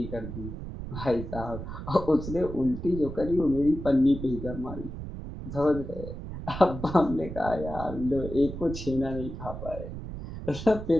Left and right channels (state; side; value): noise; right; rumble, 9 dB below the sound